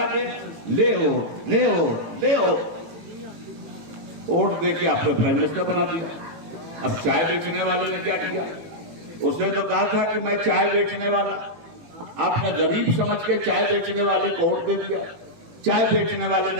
गया, ले हो ले हो ले हो, वोट देके आपने प्राइम मिनिस्टर बना दिया। अब चाय बेचने वाले ने क्या किया? उसने तो कहा था कि मैं चाय बेचने वाला, आपने गरीब समझ के चाय बेचने वाले को वोट दे दिया। चाय बेचने वाले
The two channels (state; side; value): late; left; 18 ms